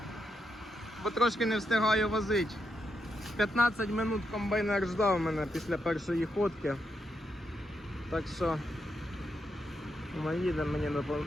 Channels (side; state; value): both; normal; correlation 0.82